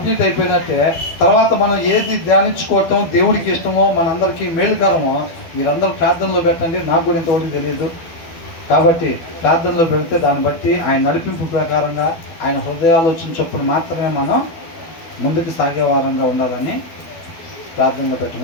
అయిపోయినట్టే. తర్వాత మనం ఏది ధ్యానించుకోవటం దేవుడికి ఇష్టమో, మనందరికీ మేలుకరమో మీరందరూ ప్రార్థనలో పెట్టండి. నాకు కూడా ఇంతవరకు తెలియదు కాబట్టి ప్రార్థనలో పెడితే దాన్ని బట్టి ఆయన నడిపింపు ప్రకారంగా ఆయన హృదయాలోచన చొప్పున మాత్రమే మనం ముందుకు సాగే వారంగా ఉండాలని ప్రార్థనలో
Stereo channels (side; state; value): right; late; 12 ms